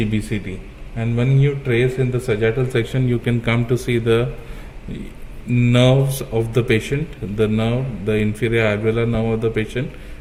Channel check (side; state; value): both; identical; correlation 1.00